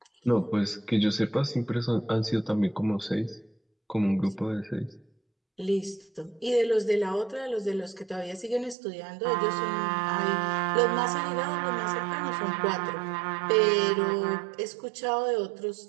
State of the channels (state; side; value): drops out; left; at 8.8 s